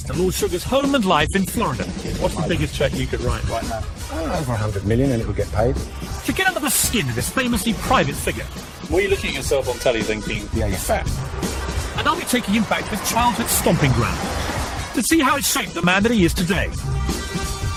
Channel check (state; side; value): identical; both; correlation 1.00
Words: to Lord Sugar's home and life in Florida. What's the biggest cheque you could write right now? Over 100 million and it would get paid. To get under the skin of this famously private figure. Were you looking at yourself on telly thinking, Yeah, you're fat. And I'll be taking him back to his childhood stomping ground to see how it shaped the man that he is today.